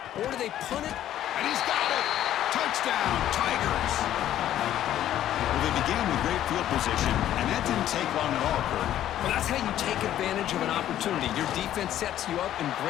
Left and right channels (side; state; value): right; quieter; 12.0 dB